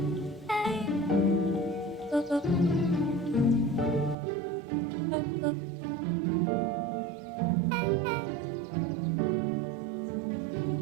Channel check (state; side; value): drops out; left; at 4.2 s